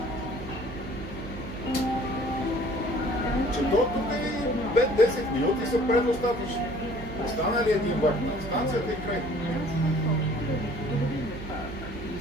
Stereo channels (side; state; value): right; noise; hum, 12 dB below the sound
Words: Че до тук и 5-10 минути са предостатъчни. Остана ли един влак на станцията и край? И